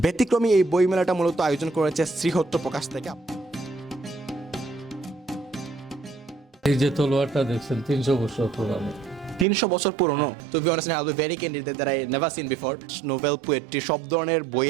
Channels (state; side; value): drops out; left; at 9.5 s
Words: এই বইমেলাটা মূলত আয়োজন করেছে শ্রীহট্ট প্রকাশ থেকে। এই যে তলোয়ারটা দেখছেন 300 বছর পুরানো। 300 বছর পুরনো। To be honest I will be very candid that I never seen before. Novel, poetry সব ধরনের